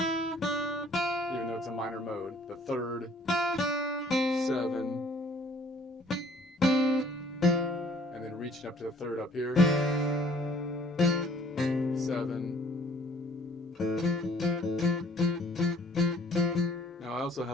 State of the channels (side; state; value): both; normal; correlation 0.57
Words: though it's a minor mode. The 3rd, 7. And then reaching up to the 3rd up here. 7. Now I also